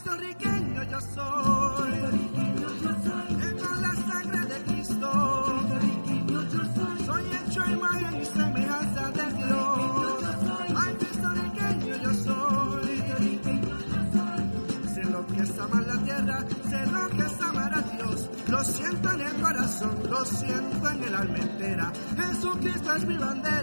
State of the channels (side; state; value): both; inverted; correlation -1.00